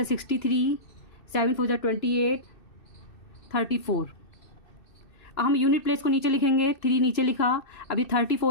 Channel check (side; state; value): right; late; 2.6 ms